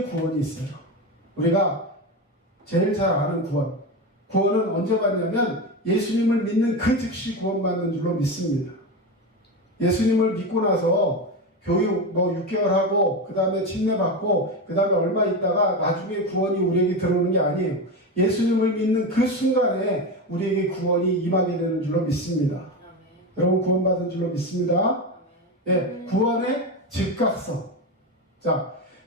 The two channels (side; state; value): both; normal; correlation 0.18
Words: 구원이 있어요. 우리가 제일 잘 아는 구원은 언제 받냐면 예수님을 믿는 그 즉시 구원받는 줄로 믿습니다. 예수님을 믿고 나서 교육 6개월 하고 그 다음에 침례받고 그 다음에 얼마 있다가 나중에 구원이 우리에게 들어오는 게 아니에요. 예수님을 믿는 그 순간에 우리에게 구원이 임하게 되는 줄로 믿습니다. 아멘. 여러분, 구원받은 줄로 믿습니다. 예, 구원의 즉각성. 자,